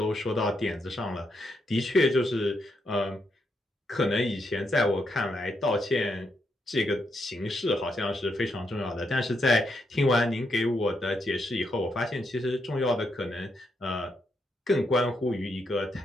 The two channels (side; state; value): both; normal; correlation 0.80